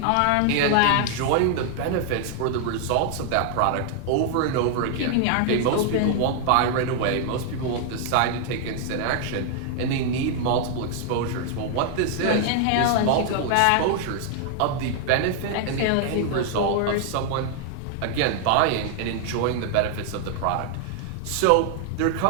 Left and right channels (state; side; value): different; both; correlation 0.00